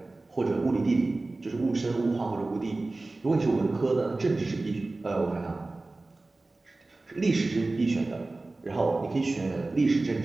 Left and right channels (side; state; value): left; quieter; 3.2 dB